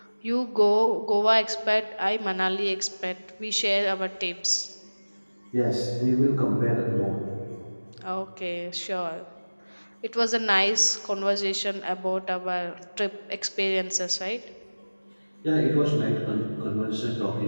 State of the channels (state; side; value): inverted; both; correlation -1.00